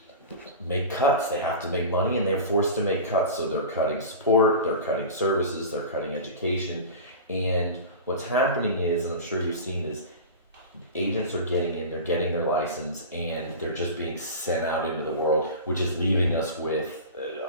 make cuts. They have to make money, and they're forced to make cuts. So they're cutting support, they're cutting services, they're cutting education, and what's happening is, and I'm sure you've seen, is agents are getting in, they're getting their license, and they're just being sent out into the world, which is leaving us with,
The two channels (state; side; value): inverted; both; correlation -0.31